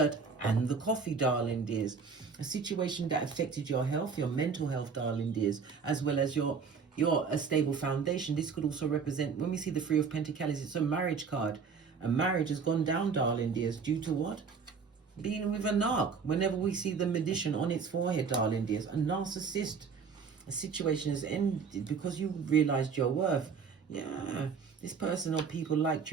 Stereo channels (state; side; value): quieter; left; 5.7 dB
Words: and the coffee, darling dears. A situation that affected your health, your mental health, darling dears, as well as your a stable foundation. This could also represent, when we see the 3 of Pentacles, it's a marriage card. A marriage has gone down, darling dears, due to what? Being with a narc. Whenever we see the magician on its forehead, darling dears, a narcissist. A situation has ended because you realized your worth. Yeah, this person or people liked